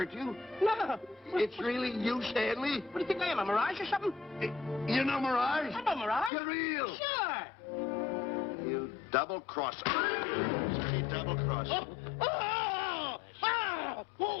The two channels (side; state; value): right; drops out; at 6.3 s